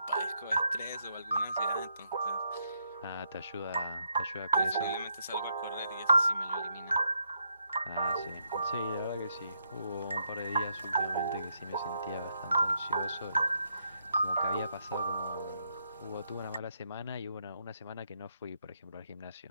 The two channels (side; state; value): both; inverted; correlation -0.77